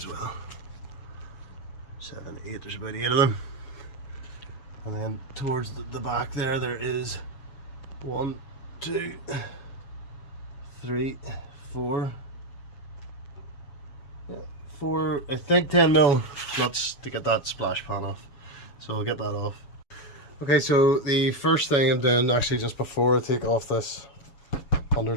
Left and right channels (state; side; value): late; right; 7.1 ms